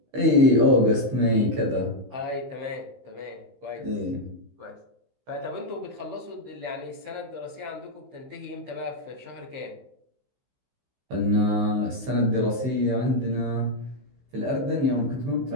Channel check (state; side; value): late; left; 15 ms